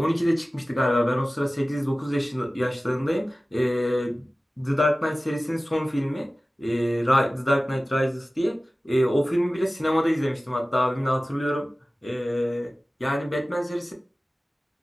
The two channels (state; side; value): normal; both; correlation 0.97